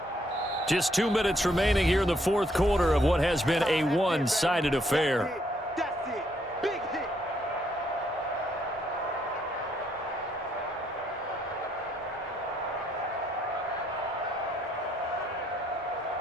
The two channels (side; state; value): both; normal; correlation 0.71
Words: Just 2 minutes remaining here in the 4th quarter of what has been a one-sided affair. That's it. Big hit.